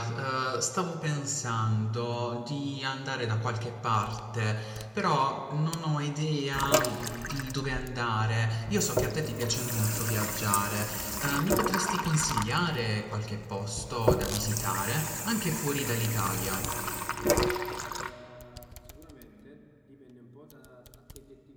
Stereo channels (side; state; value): both; identical; correlation 1.00